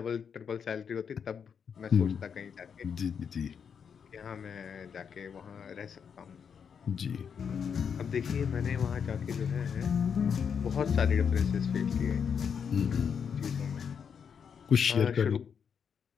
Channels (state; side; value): quieter; right; 7.0 dB